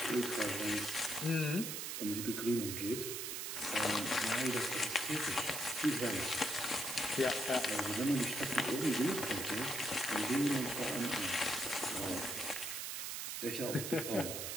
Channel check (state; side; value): noise; right; hiss, 4 dB below the sound